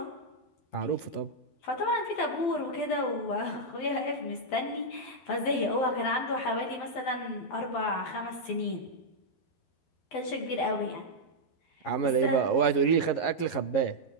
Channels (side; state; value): right; late; 12 ms